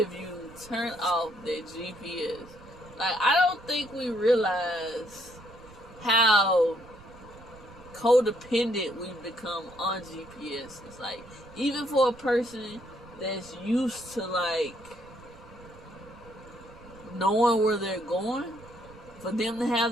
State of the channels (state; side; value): noise; right; rumble, 21 dB below the sound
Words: you turn off that GPS. Like, I don't think we realize how codependent we've become on GPS. It's like, even for a person that's used to like knowing where they're going, for them to have